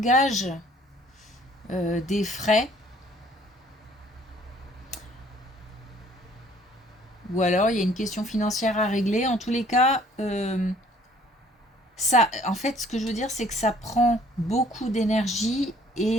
des frais ou alors il y a une question financière à régler. En tous les cas, ça, en fait, ce que je veux dire, c'est que ça prend beaucoup d'énergie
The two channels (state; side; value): normal; both; correlation 0.58